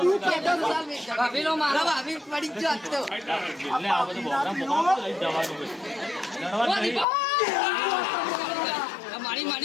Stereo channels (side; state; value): right; drops out; at 7.1 s